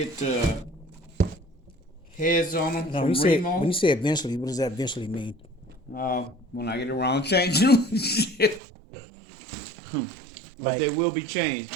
heads on them Now, from Remo. when you say eventually, what does that eventually mean? When I get around changing them, shit. But Like- they will be changed.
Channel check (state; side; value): drops out; left; at 8.6 s